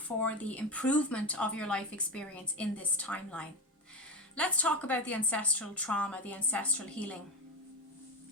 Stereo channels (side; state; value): both; normal; correlation 0.17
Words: the improvement of your life experience in this timeline. Let's talk about the ancestral trauma, the ancestral healing.